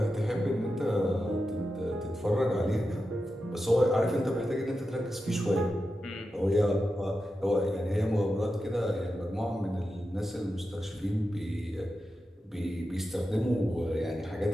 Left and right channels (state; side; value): normal; both; correlation 0.90